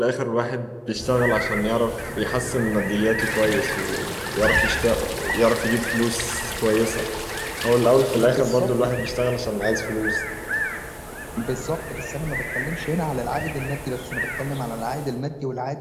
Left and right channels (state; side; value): identical; both; correlation 1.00